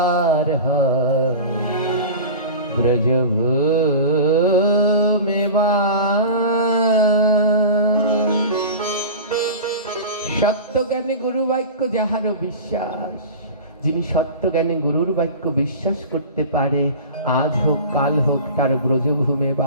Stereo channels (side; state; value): both; inverted; correlation -0.33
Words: ব্রজভূমে বাস। সত্যজ্ঞানে গুরু বাক্য যাহার বিশ্বাস, যিনি সত্যজ্ঞানে গুরুর বাক্য বিশ্বাস করতে পারে, আজ হোক কাল হোক তার ব্রজভূমে